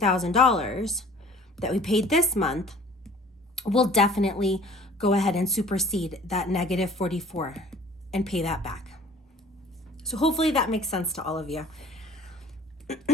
that we paid this month, we'll definitely go ahead and supersede that negative 44 and pay that back. So hopefully that makes sense to all of you.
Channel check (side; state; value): both; normal; correlation 0.50